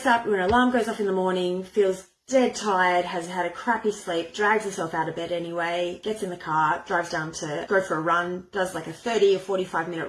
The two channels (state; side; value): identical; both; correlation 1.00